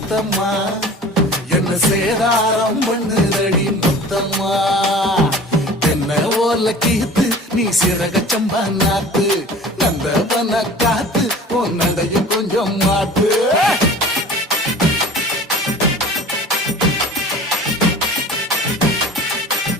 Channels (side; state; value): both; normal; correlation 0.42